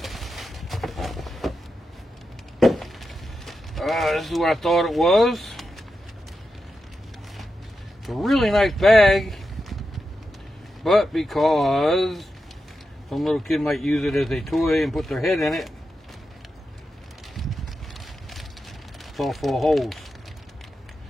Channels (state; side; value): normal; both; correlation 0.89